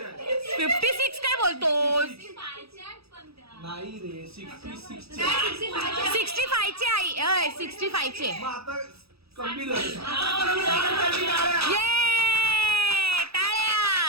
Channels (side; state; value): left; late; 0.77 ms